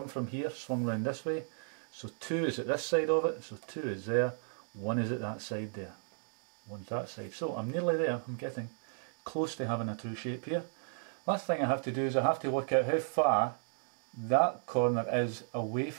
from here, swung round this way. So 2 is at this side of it, so 2 is there, 1 is at that side there. 1's that side. So I'm nearly there, I'm getting close to having a true shape here. Last thing I have to do is I have to work out how far that corner is away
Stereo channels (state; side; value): silent; left; 55 dB below the other